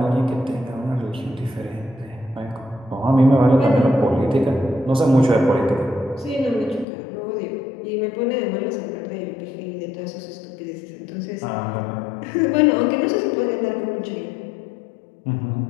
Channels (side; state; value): right; drops out; at 6.9 s